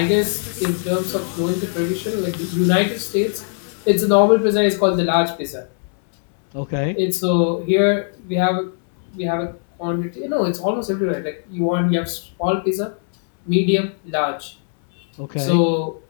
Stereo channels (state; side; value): silent; right; 66 dB below the other